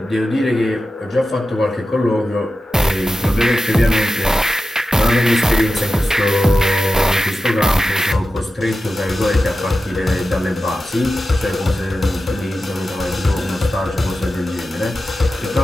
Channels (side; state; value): both; normal; correlation 0.93